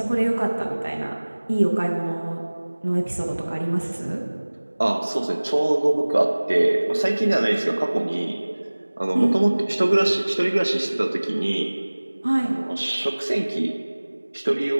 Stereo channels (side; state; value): both; inverted; correlation -1.00